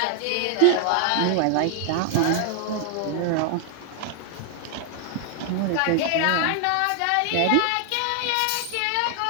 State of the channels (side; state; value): both; different; correlation 0.00